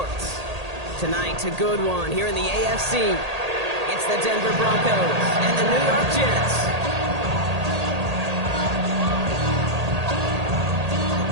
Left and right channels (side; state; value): left; late; 1.8 ms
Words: Tonight, a good one here in the AFC. It's the Denver Broncos and the New York Jets.